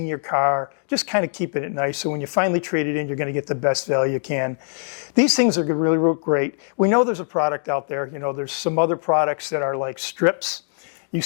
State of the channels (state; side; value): silent; right; digital silence